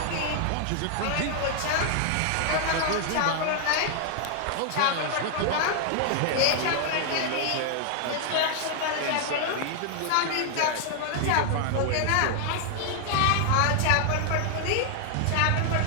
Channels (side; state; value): both; different; correlation 0.00